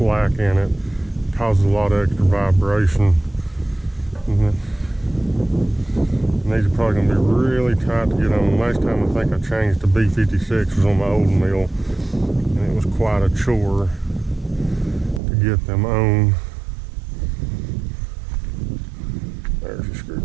in it, causes a lot of extra vibration. And these are probably going to be really tight to get on. Last time I think I changed to B56 was on my old mill, and it was quite a chore to get them on. There's a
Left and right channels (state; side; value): drops out; left; at 15.2 s